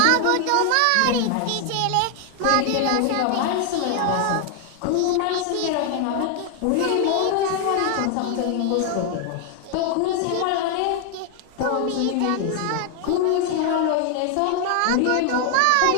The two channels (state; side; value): different; both; correlation 0.00